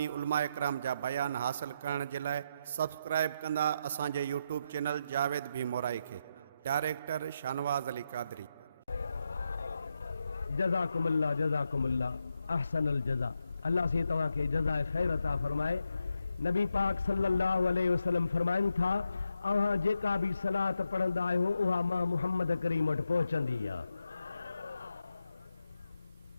उलमा इकराम जा बयान हासिल करण जे लाइ सब्सक्राइब कंदा असांजे यूट्यूब चैनल जावेद भी मोराई खे। डायरेक्टर शानवाज़ अली कादरी। जज़ाकुमुल्लाह अहसनुल जज़ा। अल्लाह से तव्हां खे जज़ाए ख़ैर अता फरमाए। नबी पाक सल्लल्लाहु अलैहि वसल्लम फरमाइनि था, अव्हां जेका भी सलात पढ़ंदा आहियो उहा मां मुहम्मद करीम वटि पहुचंदी आहे।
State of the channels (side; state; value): both; inverted; correlation -0.84